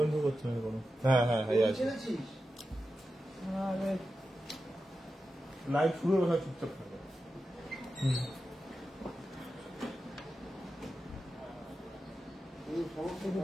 তো করছে না কোনো। হ্যাঁ হ্যাঁ হ্যাঁ আছে। লাইভ শুরু হবে, চুপচাপ থাকবে।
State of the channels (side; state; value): both; normal; correlation 0.91